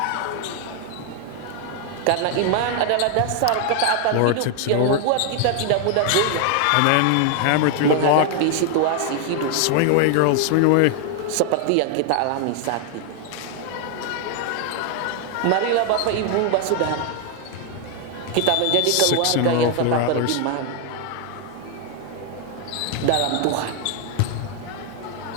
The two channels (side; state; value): both; different; correlation 0.00